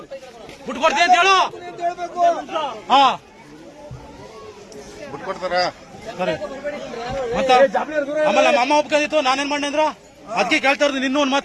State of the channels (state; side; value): identical; both; correlation 1.00